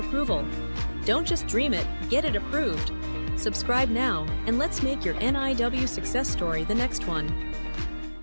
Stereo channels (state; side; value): inverted; both; correlation -1.00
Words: Don't just dream it, get it approved. Subscribe now, and let's make your NIW success story the next one.